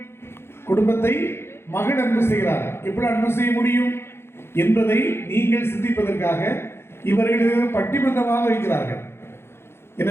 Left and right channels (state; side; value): late; right; 0.12 ms